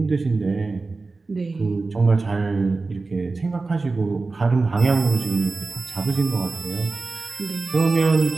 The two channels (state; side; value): quieter; left; 3.7 dB